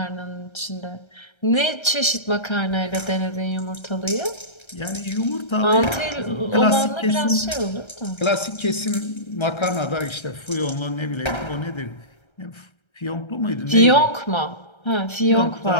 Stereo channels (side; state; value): right; late; 1.3 ms